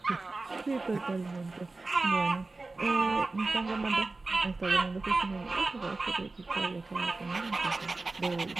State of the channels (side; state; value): left; quieter; 3.4 dB